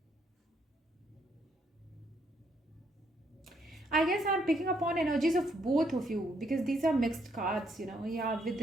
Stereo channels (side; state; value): both; normal; correlation 0.72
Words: I guess I'm picking up on energies of both of you because these are mixed cards, you know. Yeah, with